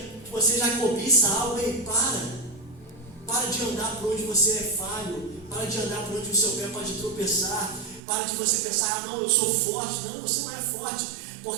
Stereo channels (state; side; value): drops out; left; at 8.0 s